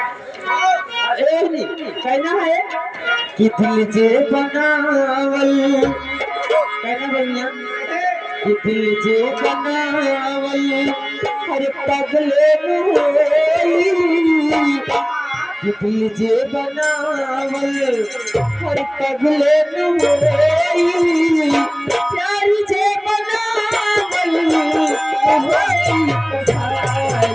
कहना है कि दिल जे बनावल कहना भैया कि दिल जे बनावल हर पगले में कि दिल जे बनावल बनावल हर पगले नुई प्यारी जे बनावल होई कसाई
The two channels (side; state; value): both; identical; correlation 1.00